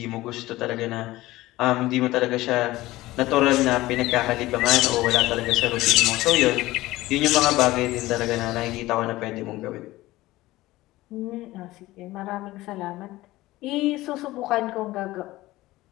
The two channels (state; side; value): quieter; right; 17.8 dB